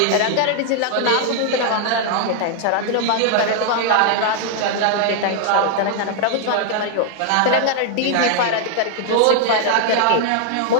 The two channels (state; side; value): different; both; correlation 0.00